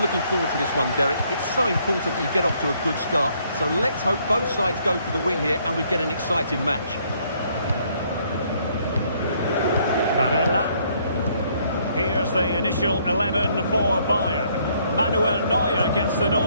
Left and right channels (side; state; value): both; inverted; correlation -0.67